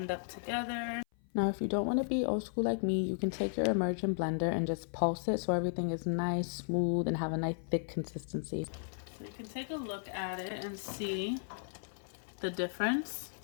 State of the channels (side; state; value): right; silent; 54 dB below the other